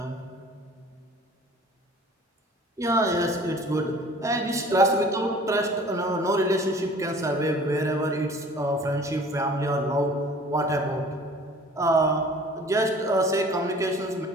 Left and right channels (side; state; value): both; normal; correlation 0.48